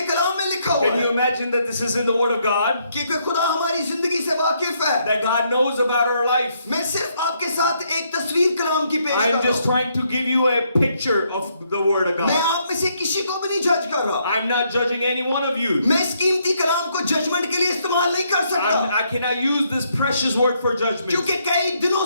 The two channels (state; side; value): inverted; both; correlation -0.73